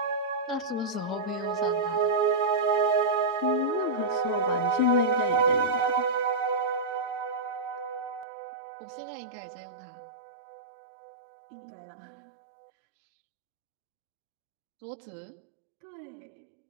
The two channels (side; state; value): left; drops out; at 8.2 s